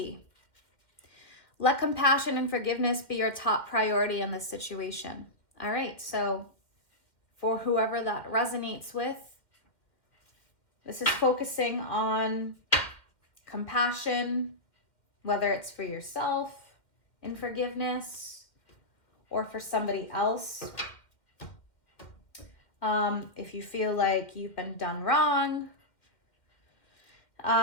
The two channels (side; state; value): right; late; 1.9 ms